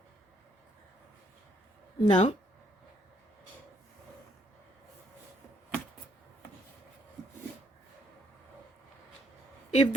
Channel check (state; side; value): normal; both; correlation 0.70